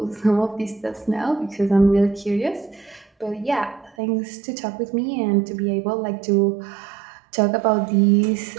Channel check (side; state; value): left; drops out; at 4.0 s